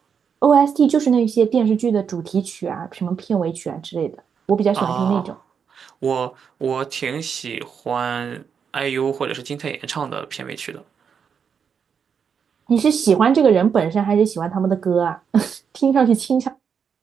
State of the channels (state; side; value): quieter; left; 6.8 dB